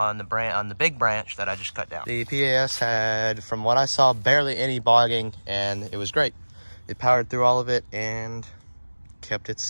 the big branch that I just cut down. The PAS had, from what I saw, barely any bogging, and it was great. It powered through all of it and kept its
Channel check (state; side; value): inverted; both; correlation -1.00